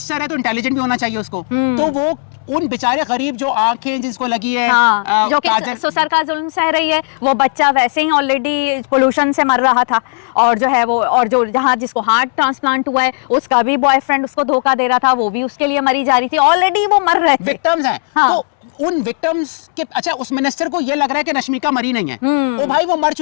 है तो इंटेलिजेंट भी होना चाहिए उसको, तो वो उन बेचारे गरीब जो आंखें जिसको लगी है, जो कि ससुर का जुल्म सह रही है, वो बच्चा वैसे ही ऑलरेडी पोल्यूशन से मर रहा था, और जो है वो, और जो जहाँ जिसको हार्ट ट्रांसप्लांट हुआ है उसका भी बॉयफ्रेंड उसको धोखा दे रहा था, वो भी उसके लिए मरी जा रही थी, ऑलरेडी वो मर रहे थे, विक्टिम्स हैं। तो उन विक्टिम्स के, अच्छा उस मिनिस्टर को ये लग रहा है कि रश्मिका मरी नहीं है, ओ भाई वो मर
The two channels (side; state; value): right; silent; digital silence